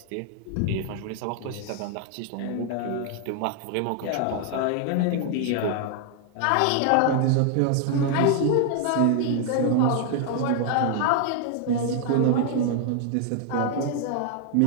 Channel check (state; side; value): different; both; correlation 0.00